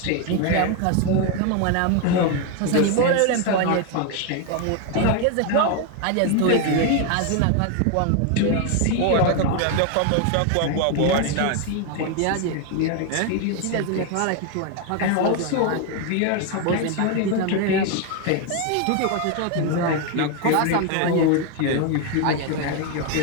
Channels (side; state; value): both; different; correlation 0.01